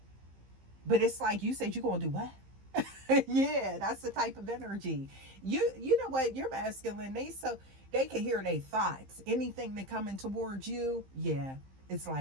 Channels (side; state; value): left; late; 15 ms